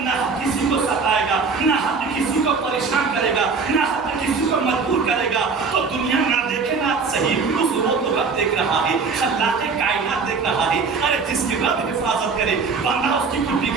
کسی کو ستائے گا، نہ کسی کو پریشان کرے گا، نہ کسی کو مجبور کرے گا، تو دنیا نہ دیکھے نہ صحیح، اس کو تو رب دیکھ رہا ہے، خلاق کائنات دیکھ رہا ہے۔ ارے جس کی رب حفاظت کرے بندہ اس کی کوئی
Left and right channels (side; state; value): left; quieter; 4.9 dB